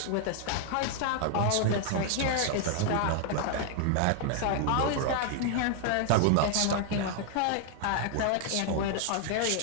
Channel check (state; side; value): different; both; correlation 0.00